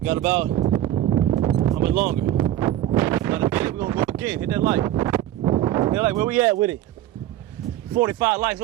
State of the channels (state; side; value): quieter; left; 13.1 dB